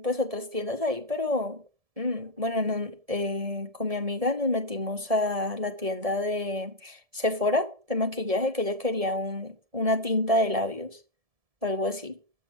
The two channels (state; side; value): late; left; 1.7 ms